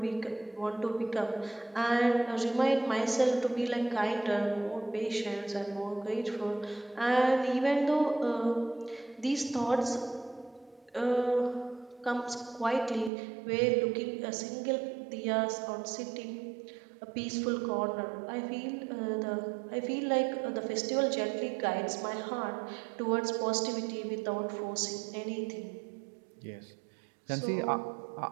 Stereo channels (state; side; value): drops out; left; at 13.1 s